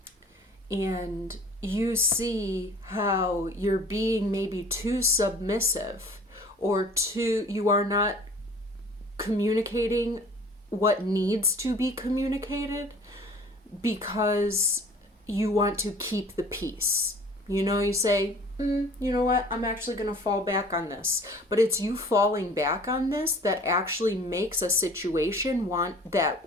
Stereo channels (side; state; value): both; normal; correlation 0.48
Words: And you see how you're being maybe too submissive or you are not communicating what needs to be communicated because you want to keep the peace. You say, you know what, I'm actually going to fall back on this. But it's you falling back on this that actually makes a situation that